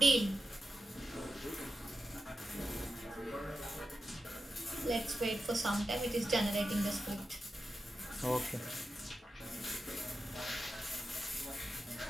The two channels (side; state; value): both; normal; correlation 0.90